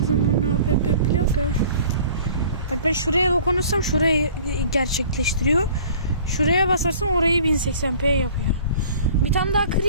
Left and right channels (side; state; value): both; inverted; correlation -0.48